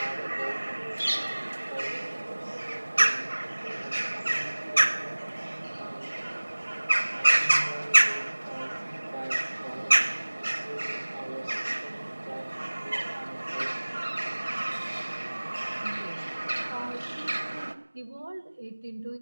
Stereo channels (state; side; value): inverted; both; correlation -1.00